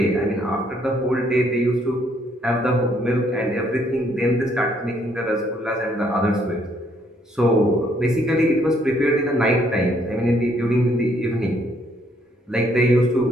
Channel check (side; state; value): both; normal; correlation 0.68